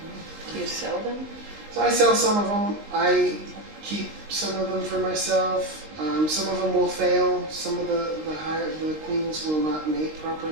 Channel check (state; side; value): late; left; 19 ms